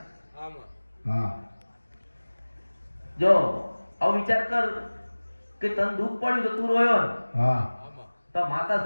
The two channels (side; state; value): both; inverted; correlation -1.00